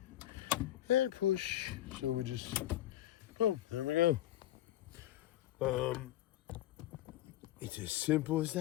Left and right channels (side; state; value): right; quieter; 13.8 dB